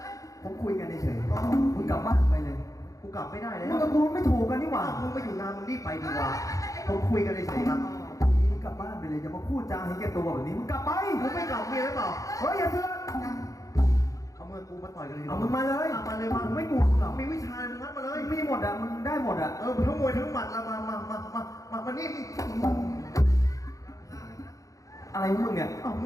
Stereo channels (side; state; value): right; late; 0.16 ms